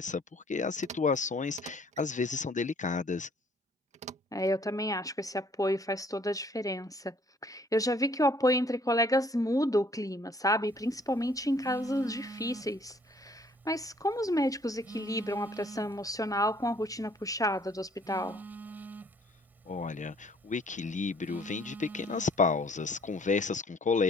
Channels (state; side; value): normal; both; correlation 0.60